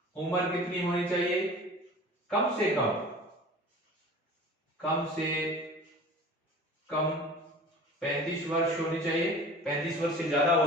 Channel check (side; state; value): both; normal; correlation 0.41